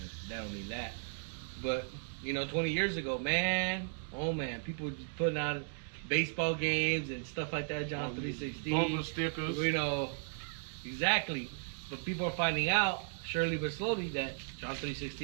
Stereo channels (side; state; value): left; silent; digital silence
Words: don't mean that. But, you know, 20 years ago, man, people were just putting out baseball games and stuff like that, John 3:16. Bumper stickers. You know, exactly. But people are finding out, surely but slowly, that John